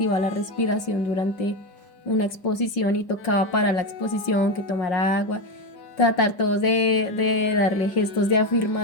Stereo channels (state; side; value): late; right; 5.1 ms